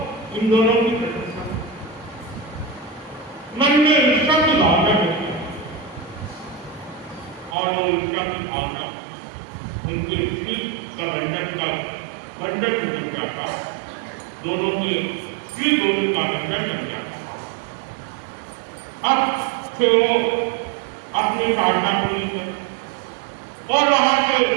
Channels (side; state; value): left; drops out; at 7.6 s